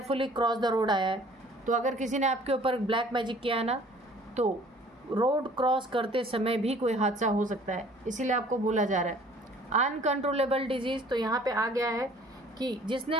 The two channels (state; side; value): normal; both; correlation 0.53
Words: क्रॉस द रोड आया है, तो अगर किसी ने आपके ऊपर ब्लैक मैजिक किया है ना, तो रोड क्रॉस करते समय भी कोई हादसा हो सकता है, इसीलिए आपको बोला जा रहा है अनकंट्रोलेबल डिजीज़, तो यहाँ पे आ गया है कि जिसने